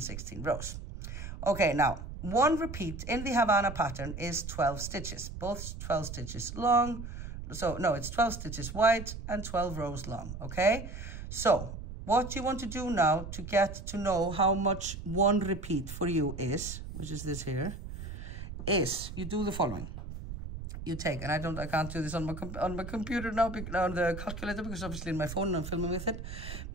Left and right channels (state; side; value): noise; right; rumble, 9 dB below the sound